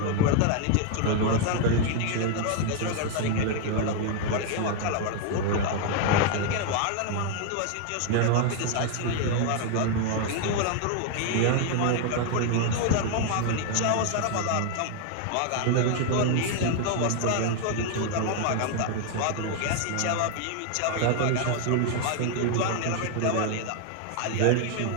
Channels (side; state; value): both; different; correlation 0.00